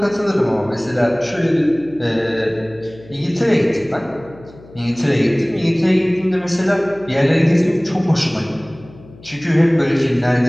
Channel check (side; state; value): left; noise; hum, 22 dB below the sound